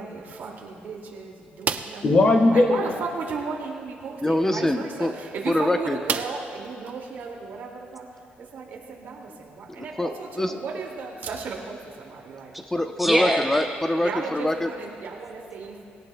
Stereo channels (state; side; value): normal; both; correlation 0.84